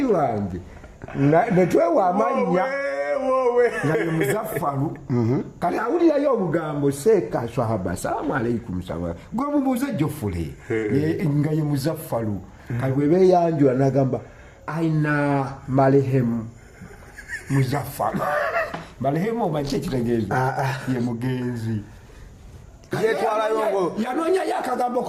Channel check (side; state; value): both; identical; correlation 1.00